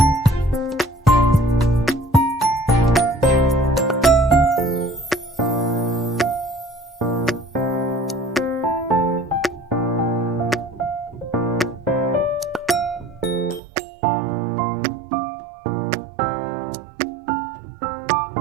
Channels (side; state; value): left; drops out; at 13.6 s